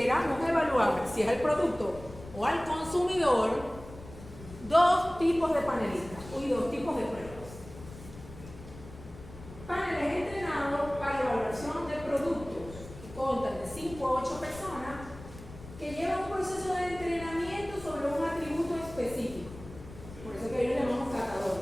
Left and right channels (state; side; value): noise; left; rumble, 16 dB below the sound